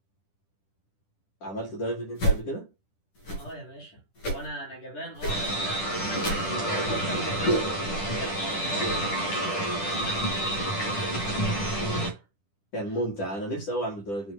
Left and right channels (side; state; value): right; late; 10 ms